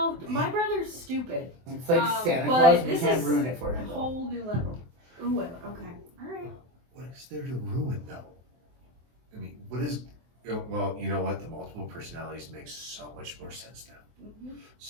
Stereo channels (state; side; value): late; left; 24 ms